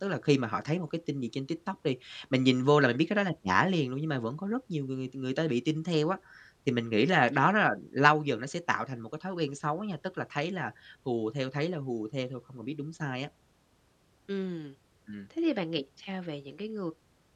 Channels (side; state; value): both; identical; correlation 1.00